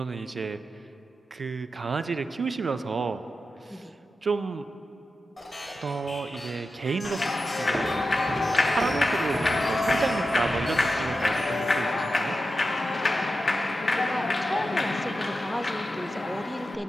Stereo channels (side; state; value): both; normal; correlation 0.90